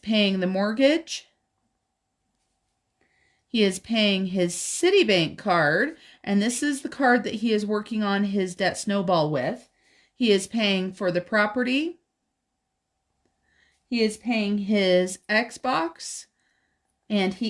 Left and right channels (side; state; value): both; identical; correlation 1.00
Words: the mortgage. He is paying his Citibank card, and this is the card that he is working on his debt Snowball with. He is paying for the property. He is paying his Xbox, and